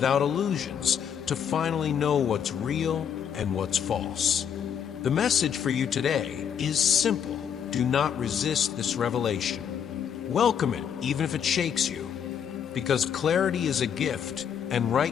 illusions, to finally know what's real and what's false. The message for you today is simple. Do not resist this revelation. Welcome it, even if it shakes you, because clarity is a gift, and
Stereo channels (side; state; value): right; quieter; 8.2 dB